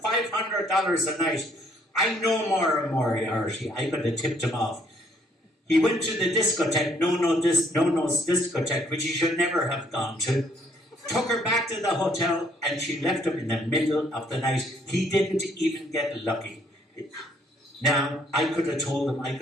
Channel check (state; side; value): normal; both; correlation 0.65